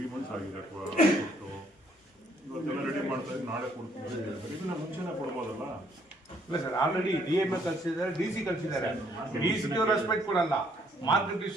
ಮಂತ್ಸ್ ಆಗಿದೆ ಕೊಟ್ಟು, ಇವತ್ತೆಲ್ಲ ರೆಡಿ ಮಾಡ್ತಾ ಇದ್ರೆ ನಾಳೆ ಕೊಡ್ತೀನಿ. ಇದನ್ನ ಮುಂಚೆನೇ ಕೊಡ್ಬೋದಲ್ಲ? ಇಲ್ಲ ಸರ್, ಆಲ್ರೆಡಿ DMA ಕಳಿಸಿದ್ದಾರೆ, DC ಕಳಿಸಿದ್ದಾರೆ. DC ರೆಸ್ಪೆಕ್ಟ್ ಕೊಡಲ್ಲ. ಮಾರ್ಕೆಟ್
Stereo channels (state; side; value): normal; both; correlation 0.66